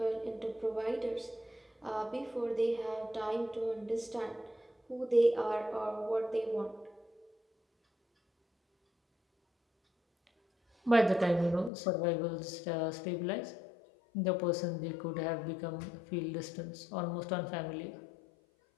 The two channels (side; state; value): right; drops out; at 11.7 s